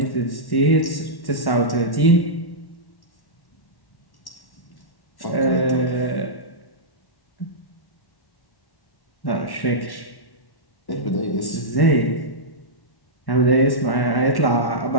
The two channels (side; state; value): right; late; 1.1 ms